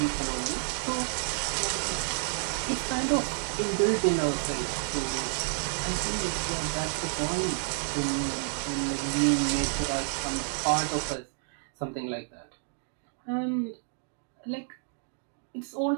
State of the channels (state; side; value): silent; left; 58 dB below the other